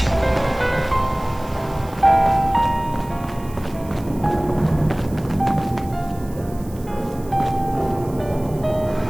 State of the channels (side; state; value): right; noise; hiss, 22 dB below the sound